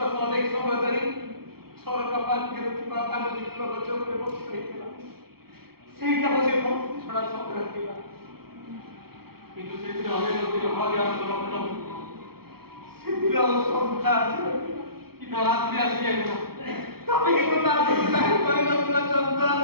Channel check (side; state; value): left; late; 0.94 ms